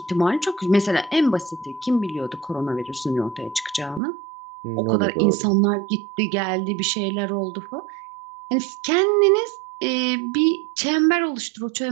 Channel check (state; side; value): drops out; left; at 4.0 s